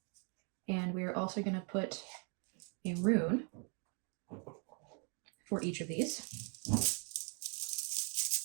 And we're also going to put a rune for each of these.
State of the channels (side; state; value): left; quieter; 36.9 dB